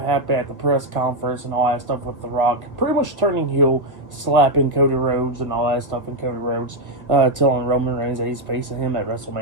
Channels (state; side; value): late; left; 1.5 ms